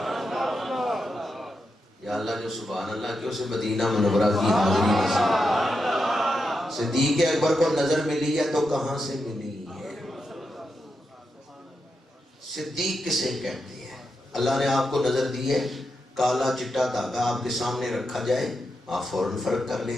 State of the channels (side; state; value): both; normal; correlation 0.86